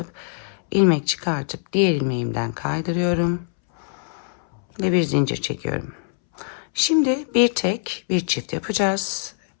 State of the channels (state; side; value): silent; right; 63 dB below the other